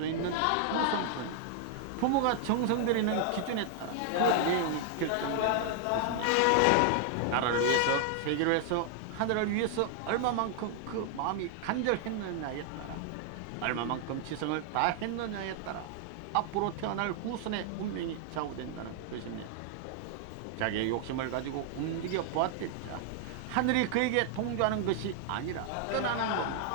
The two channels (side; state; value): both; different; correlation 0.00